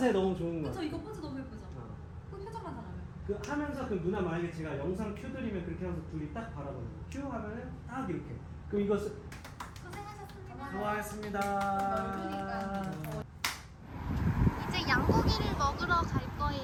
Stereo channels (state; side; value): identical; both; correlation 1.00